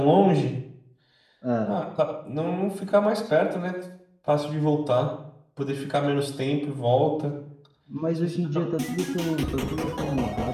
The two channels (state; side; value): identical; both; correlation 1.00